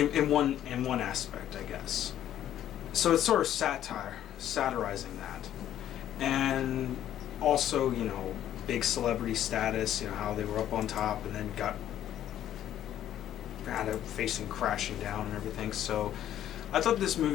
one aspect, I guess. So it's sort of satirizing that. And also, big celebrity status, how they were up on top and then got facing crashing down and everything. So I thought this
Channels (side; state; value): right; quieter; 11.5 dB